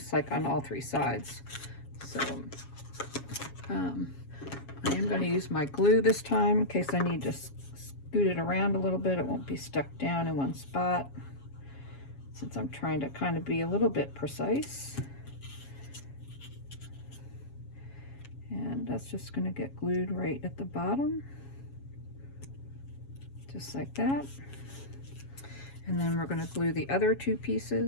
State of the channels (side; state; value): right; late; 7.3 ms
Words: like on all 3 sides. So I am going to use my glue this time in case I need to scoot it around a little bit. It won't be stuck down in one spot, since I'm trying to kind of be a little bit precise. And that's just going to get glued right at the bottom, just like that. And then we're going to glue the other two